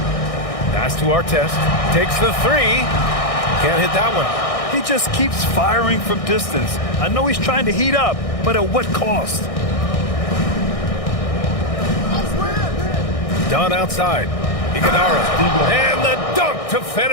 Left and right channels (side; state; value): right; late; 1.6 ms